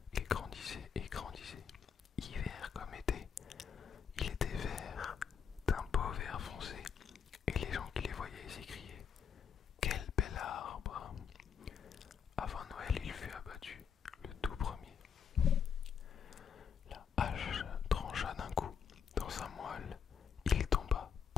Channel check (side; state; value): right; quieter; 7.1 dB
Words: Il grandissait et grandissait, hiver comme été. Il était vert, d'un beau vert foncé, et les gens qui les voyaient s'écriaient « Quel bel arbre !» Avant Noël, il fut abattu, le tout premier. La hache trancha d'un coup dans sa moelle. Il tomba,